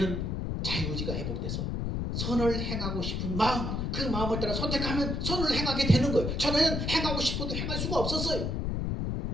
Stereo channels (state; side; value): noise; left; rumble, 1 dB below the sound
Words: 자유의지가 회복돼서 선을 행하고 싶은 마음, 그 마음을 따라 선택하면 선을 행하게 되는 거예요. 전에는 행하고 싶어도 행할 수가 없었어요.